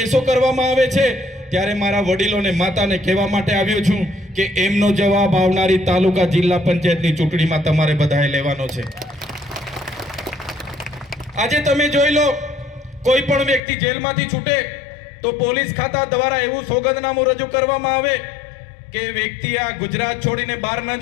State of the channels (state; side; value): drops out; right; at 13.6 s